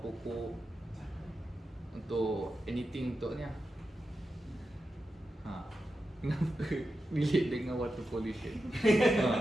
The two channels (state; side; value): normal; both; correlation 0.90